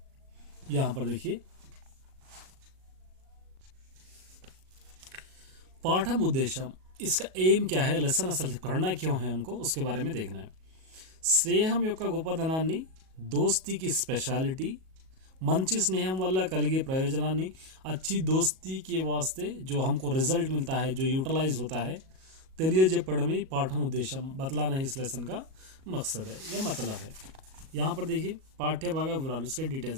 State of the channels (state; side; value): late; left; 37 ms